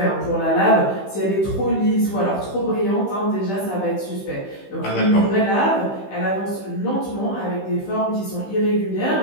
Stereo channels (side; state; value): right; late; 15 ms